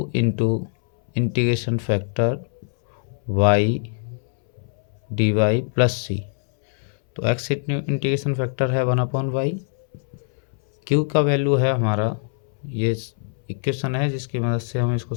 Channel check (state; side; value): silent; right; 64 dB below the other